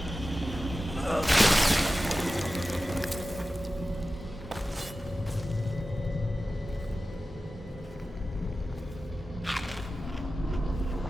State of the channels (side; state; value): both; normal; correlation 0.95